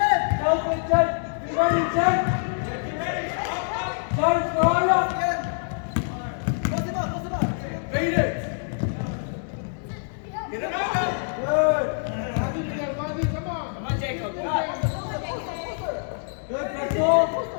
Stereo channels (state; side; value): silent; right; digital silence